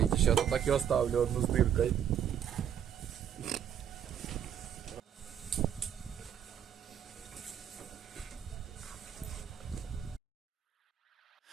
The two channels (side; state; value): left; quieter; 9.3 dB